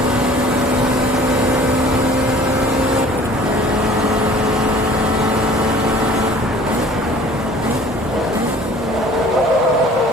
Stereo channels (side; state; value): both; normal; correlation 0.50